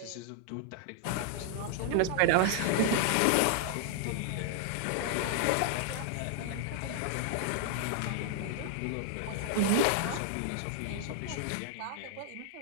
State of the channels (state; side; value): different; both; correlation 0.00